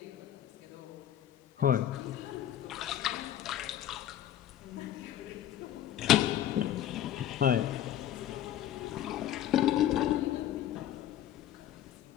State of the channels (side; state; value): right; quieter; 11.4 dB